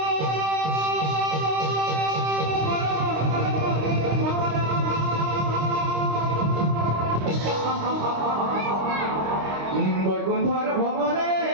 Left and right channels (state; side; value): late; left; 26 ms